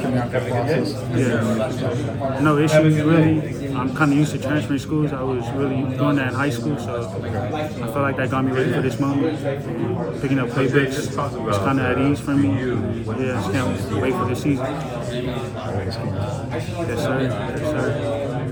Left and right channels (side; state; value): both; identical; correlation 1.00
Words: a natural process? Yeah, no issues really. I'm kind of used to transferring schools. I was really doing that in high school, so I feel like that got me ready for this moment. Picking up playbooks was kind of at ease for me. Yeah, I just can't wait for the season. Yes, sir. Yes, sir.